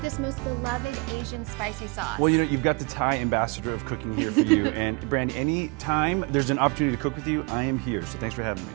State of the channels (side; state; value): left; quieter; 30.6 dB